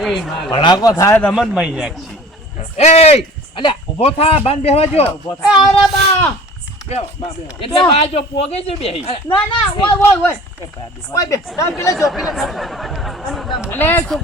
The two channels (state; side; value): normal; both; correlation 0.44